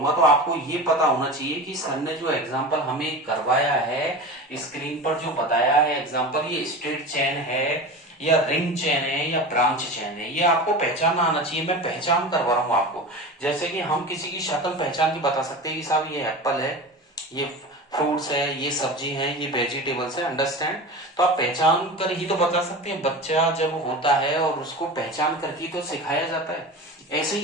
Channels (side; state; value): both; normal; correlation 0.30